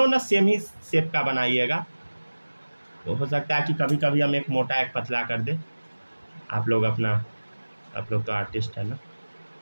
ना सेम ही शेप का बनाइएगा, तो हो सकता है कि कभी कभी हम एक मोटा एक पतला कर दे। आप लोग तो आर्टिस्ट है ना,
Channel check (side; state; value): both; inverted; correlation -1.00